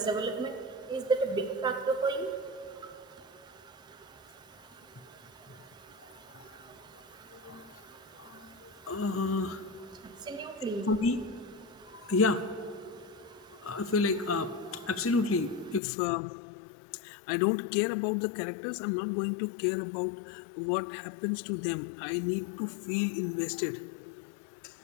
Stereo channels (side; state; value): right; drops out; at 15.8 s